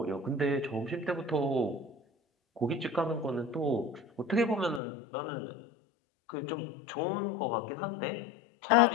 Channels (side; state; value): right; drops out; at 4.8 s